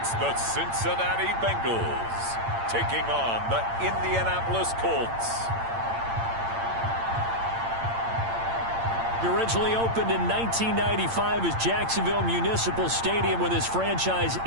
the Cincinnati Bengals taking on the Indianapolis Colts. It originally opened in 1995 as Jacksonville Municipal Stadium when this franchise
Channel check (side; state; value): left; late; 8.8 ms